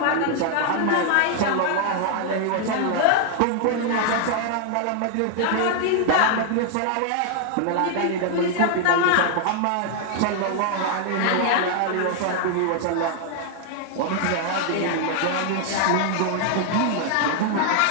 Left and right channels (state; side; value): different; both; correlation 0.00